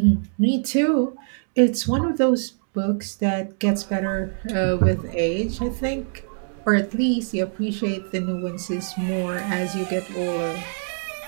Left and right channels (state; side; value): silent; left; digital silence